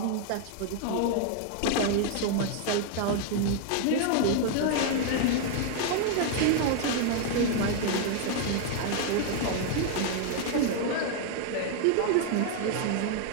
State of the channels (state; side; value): different; both; correlation 0.00